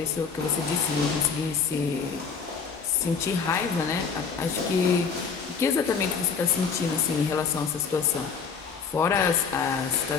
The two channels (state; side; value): quieter; right; 5.8 dB